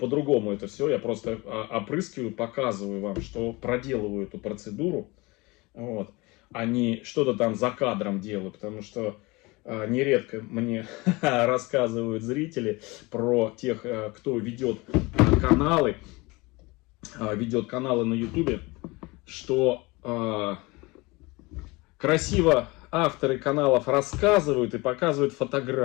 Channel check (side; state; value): right; quieter; 24.1 dB